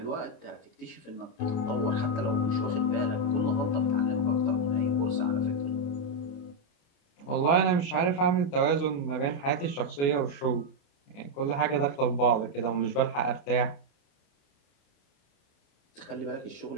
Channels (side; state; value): right; late; 28 ms